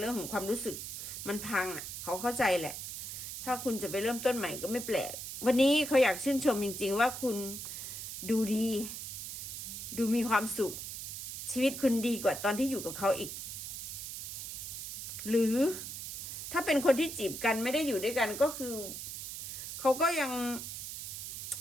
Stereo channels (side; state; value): right; noise; hiss, 7 dB below the sound